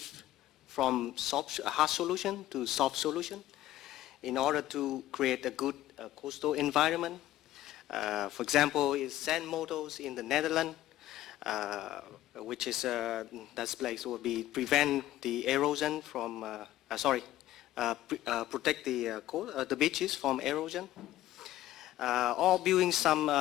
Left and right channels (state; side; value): quieter; right; 14.4 dB